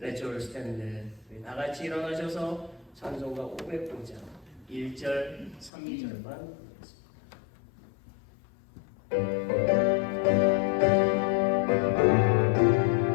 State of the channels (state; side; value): drops out; right; at 5.7 s